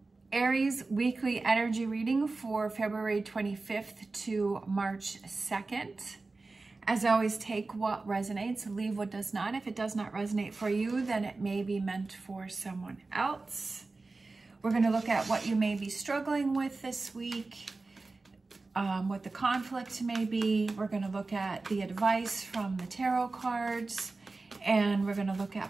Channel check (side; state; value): left; quieter; 3.6 dB